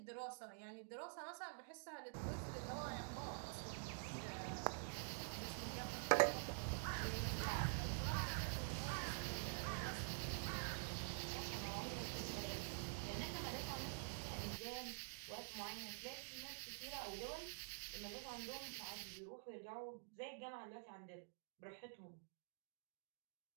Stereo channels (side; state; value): left; silent; digital silence